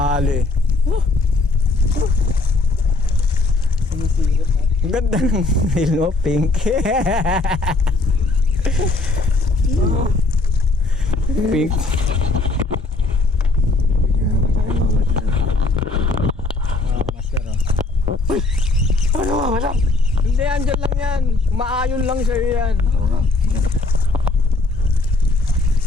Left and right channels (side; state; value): right; quieter; 3.3 dB